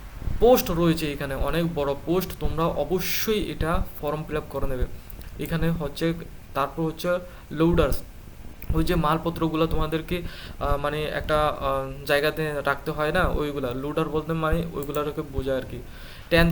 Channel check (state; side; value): identical; both; correlation 1.00